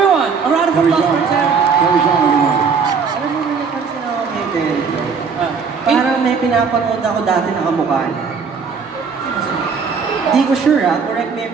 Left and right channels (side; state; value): left; quieter; 5.6 dB